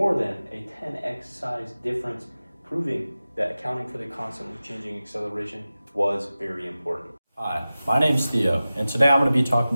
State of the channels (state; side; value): inverted; both; correlation -0.96